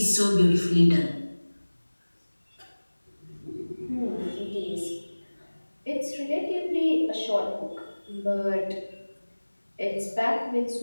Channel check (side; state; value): both; inverted; correlation -1.00